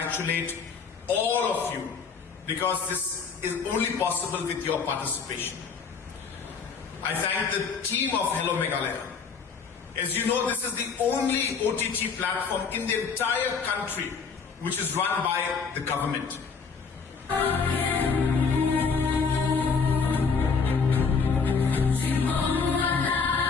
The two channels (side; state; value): right; quieter; 5.4 dB